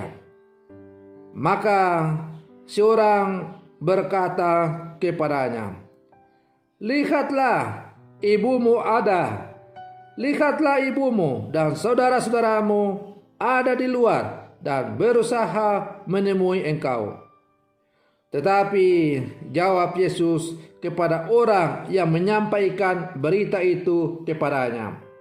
Maka seorang berkata kepadanya, "Lihatlah, ibumu ada. Lihatlah ibumu dan saudara-saudaramu ada di luar dan berusaha menemui engkau." Tetapi jawab Yesus kepada orang yang menyampaikan berita itu kepadanya,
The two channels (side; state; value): both; identical; correlation 1.00